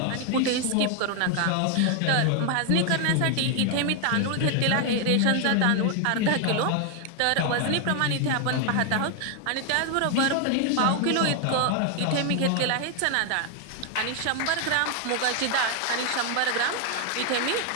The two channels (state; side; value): different; both; correlation 0.00